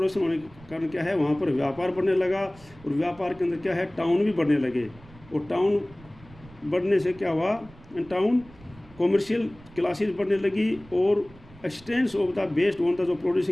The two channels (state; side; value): noise; right; rumble, 23 dB below the sound